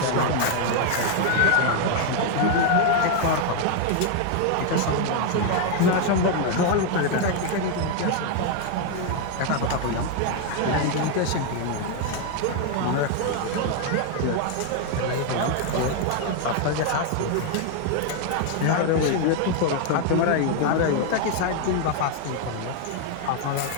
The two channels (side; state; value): both; different; correlation 0.00